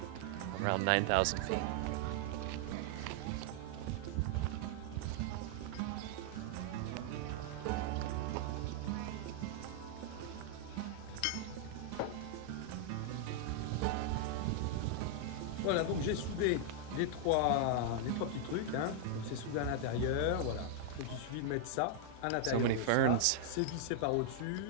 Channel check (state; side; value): different; both; correlation 0.00